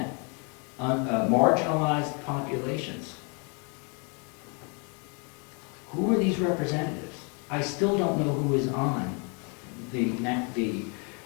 marginalized populations. Who are these representatives? I still don't know who is on the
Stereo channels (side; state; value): right; quieter; 35.2 dB